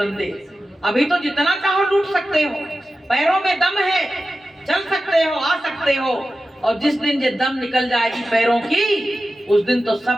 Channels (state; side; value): normal; both; correlation 0.93